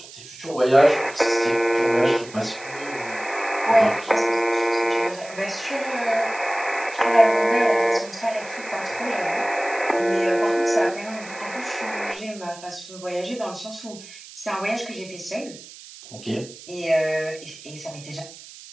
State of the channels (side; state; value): right; noise; hiss, 17 dB below the sound